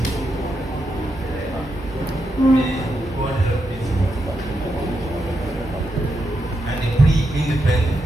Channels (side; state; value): both; normal; correlation 0.84